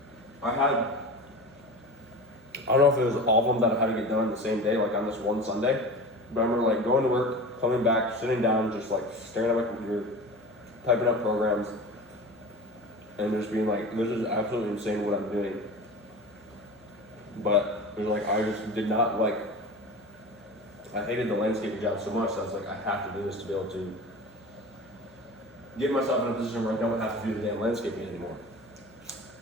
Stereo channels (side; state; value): left; noise; hum, 28 dB below the sound